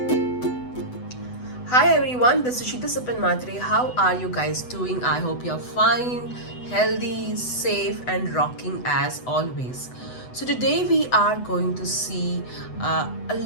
everyone, this is Sheeta Sapan Matre. How are you guys doing? I hope you're fine, healthy, safe, and rocking as always. So, today we are going to see a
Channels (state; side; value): late; right; 8.0 ms